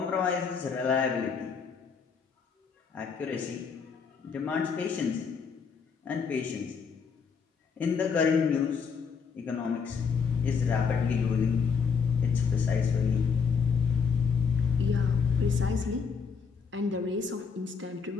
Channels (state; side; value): quieter; right; 5.7 dB